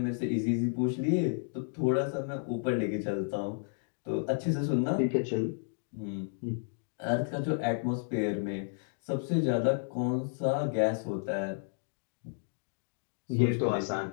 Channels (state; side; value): silent; right; digital silence